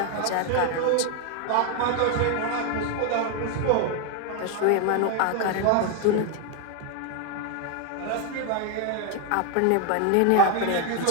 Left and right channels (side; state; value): both; different; correlation 0.01